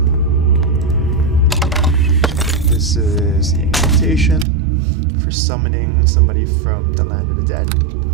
This is the invitation for summoning somebody from the land of the dead.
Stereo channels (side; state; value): left; drops out; at 4.5 s